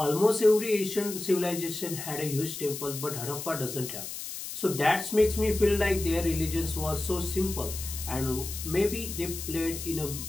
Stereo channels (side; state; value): left; noise; hiss, 8 dB below the sound